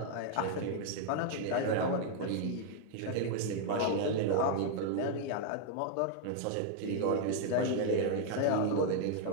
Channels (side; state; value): both; different; correlation 0.00